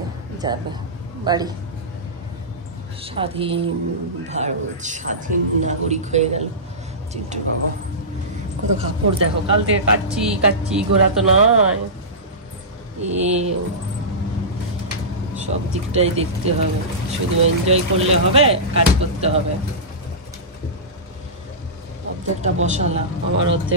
যাবে বাড়ি। স্বাধীন ভারত, স্বাধীন নাগরিক হয়ে গেল চিন্টুর বাবা। কত কাপড় দেখো, কাল থেকে কাচ্ছি ঘোরা তো নয়, সব দিকটাই দেখতে হবে, শুধু এনজয় করলে হবে, কাজ করতে হবে। অর্ধেকটা বসালাম, আমার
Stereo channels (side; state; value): both; normal; correlation -0.18